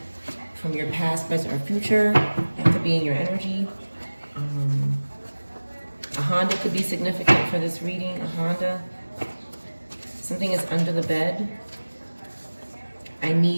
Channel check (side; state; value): both; inverted; correlation -1.00